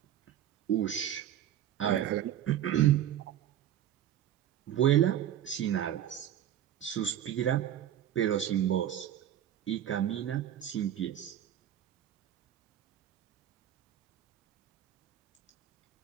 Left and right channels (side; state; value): left; quieter; 11.1 dB